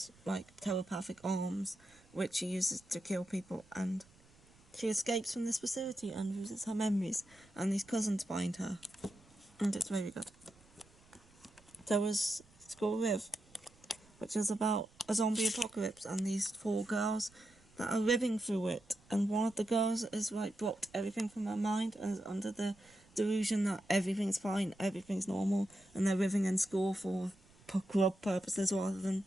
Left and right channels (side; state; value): right; noise; rumble, 28 dB below the sound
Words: like telepathic arms, which she uses to kill people, and she escapes from this facility and loses her memories, and these cousins find her, and it's very good. There was School Live, which is about a zombie apocalypse and these 4 girls that are living through it, and one of the girls is like blocked everything from her mind and is under the delusion that everything's fine, everything's normal, and they're living in school for club purposes rather than